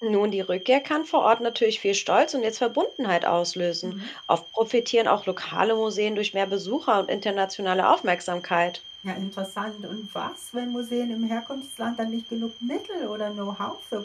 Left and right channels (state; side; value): identical; both; correlation 1.00